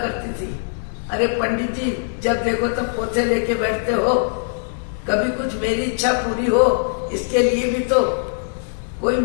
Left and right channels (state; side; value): silent; right; 62 dB below the other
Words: थी। अरे पंडित जी, जब देखो तब पोछे लेके बैठते हो, कभी कुछ मेरी इच्छा पूरी हो, इसके लिए भी तो कोई